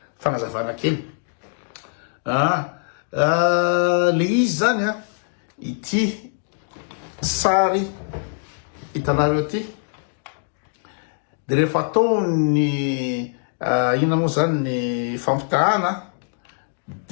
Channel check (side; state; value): right; silent; digital silence